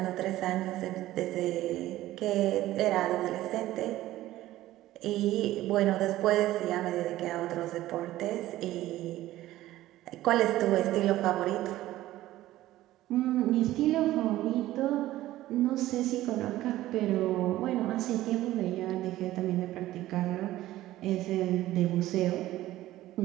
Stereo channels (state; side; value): quieter; left; 15.3 dB